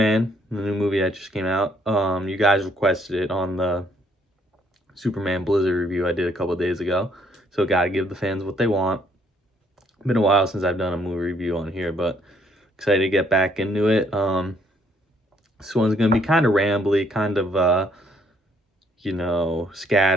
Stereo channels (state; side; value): normal; both; correlation 0.67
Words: the new movie that just came out. You guys requested it on the Superman Blizzard review I did a couple days ago. So, gotta give the fans what they want. Been a while since I've done a movie review on here, but excited to get back into it. This one's gonna be kind of rambly, kind of,